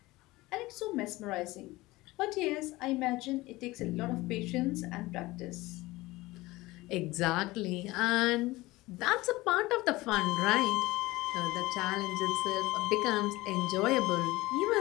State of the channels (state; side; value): quieter; right; 19.9 dB